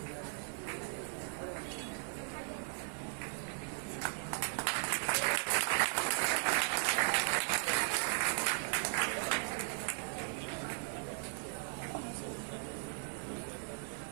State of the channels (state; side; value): silent; left; 53 dB below the other